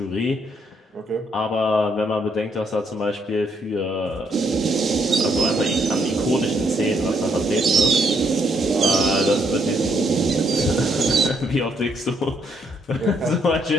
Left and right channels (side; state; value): both; normal; correlation 0.72